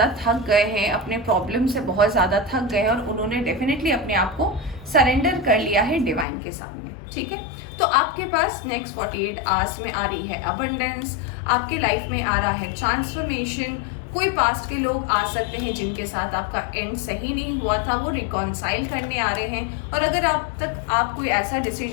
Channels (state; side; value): drops out; right; at 6.2 s